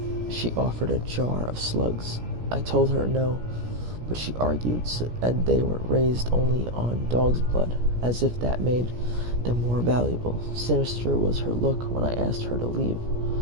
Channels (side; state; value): left; late; 17 ms